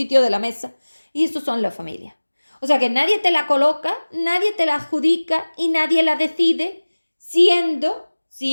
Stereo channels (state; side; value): inverted; both; correlation -1.00